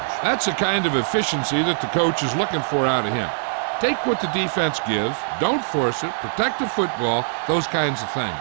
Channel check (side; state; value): left; silent; digital silence